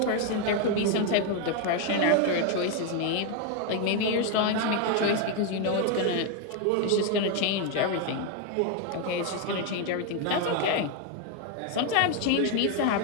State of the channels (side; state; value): both; different; correlation 0.01